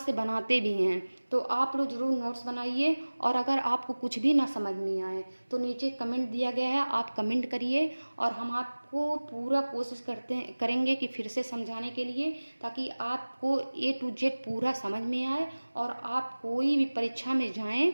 से बनाते भी हैं, तो आप लोग ज़रूर नोट्स बनाइए। और अगर आपको कुछ भी ना समझ में आए तो नीचे कमेंट दिया गया है, आप कमेंट करिए और हम आपको पूरा कोशिश करेंगे कि फिर से समझाने के लिए, ताकि आपको A to Z पूरा समझ में आए और आप कोई भी परीक्षा में जाएं।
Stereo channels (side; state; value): both; inverted; correlation -1.00